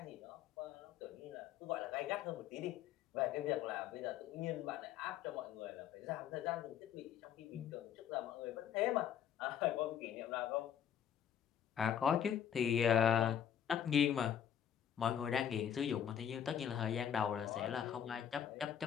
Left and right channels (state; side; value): quieter; right; 9.2 dB